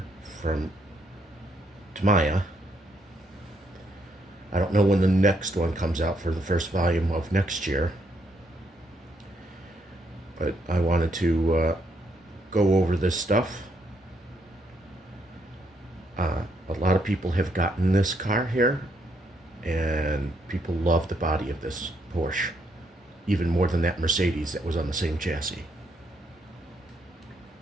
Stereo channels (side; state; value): both; normal; correlation 0.74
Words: from Tamaya. I don't know when the next one comes out for the first volume of next year, but I wanted to go over this stuff. A lot of people have gotten this car here, and people love the body of this Porsche, even more than that Mercedes that was on the same chassis.